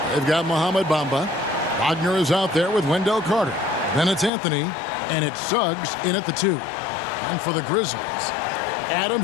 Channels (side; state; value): right; drops out; at 4.3 s